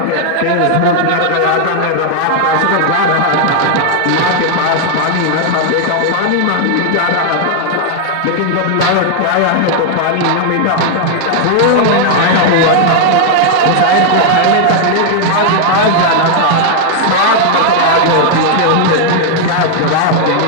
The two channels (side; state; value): both; different; correlation 0.00